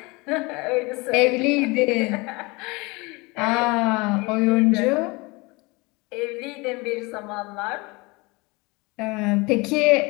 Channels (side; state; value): right; quieter; 25.5 dB